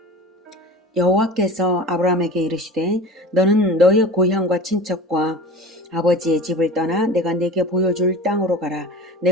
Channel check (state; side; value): normal; both; correlation 0.35